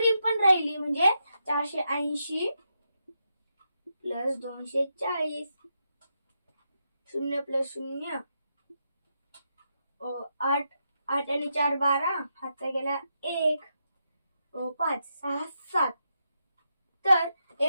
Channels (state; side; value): inverted; both; correlation -0.84